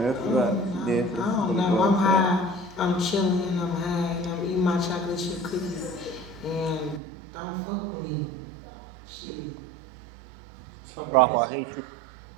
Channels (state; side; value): drops out; left; at 7.0 s